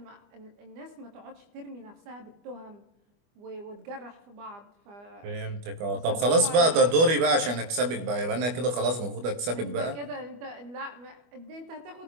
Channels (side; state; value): left; late; 25 ms